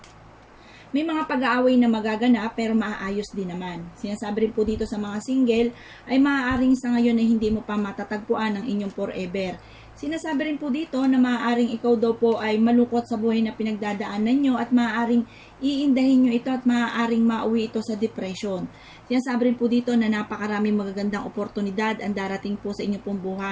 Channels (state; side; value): identical; both; correlation 1.00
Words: may mga pag-aaway na magaganap pero maaayos din naman. Sinasabi rin po dito sa mga single ay maaaring sa ngayon ay hindi mo pa matatagpuan ang inyong forever. Sinasabi rin po dito na maaaring ikaw daw po ay malungkot sa buhay na pinagdadaanan nyo at maaaring iindahin nyo ito at maaaring mauwi ito sa depression. Sinasabi rin po dito na napakaraming magagandang oportunidad ang darating po sa inyong pong